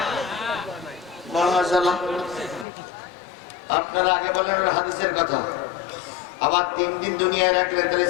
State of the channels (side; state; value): right; drops out; at 2.7 s